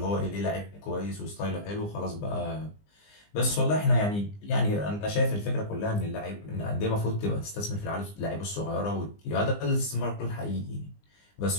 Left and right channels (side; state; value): right; late; 20 ms